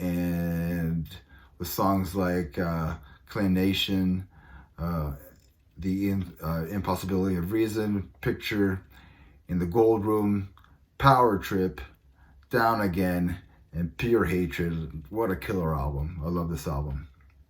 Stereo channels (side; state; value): both; identical; correlation 1.00